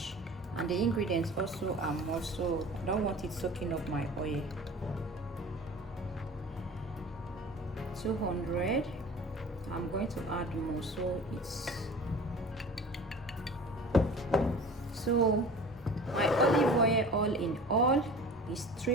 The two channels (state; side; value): normal; both; correlation 0.40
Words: And the ingredients also are more, so I don't want it soaking up my oil. 200. I'm going to add more, so my olive oil all in all is